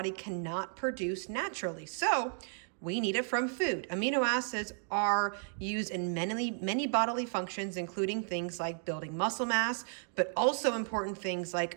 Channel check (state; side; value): silent; left; 55 dB below the other